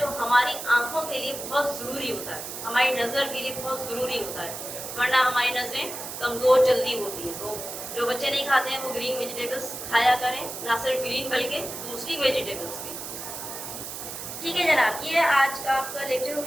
हमारी आंखों के लिए बहुत ज़रूरी होता है, हमारी नज़र के लिए बहुत ज़रूरी होता है, वरना हमारी नज़रें कमज़ोर जल्दी होती है. तो जो बच्चे नहीं खाते हैं वो ग्रीन वेजिटेबल्स खाया करें, ना सिर्फ ग्रीन बल्कि दूसरी वेजिटेबल्स भी. ठीक है जनाब, ये आज का आपका लेक्चर हो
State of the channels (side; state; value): right; noise; hiss, 8 dB below the sound